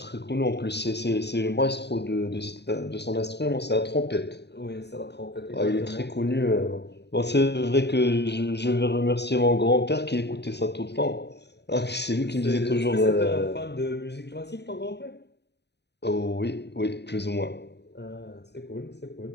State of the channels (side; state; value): right; late; 0.49 ms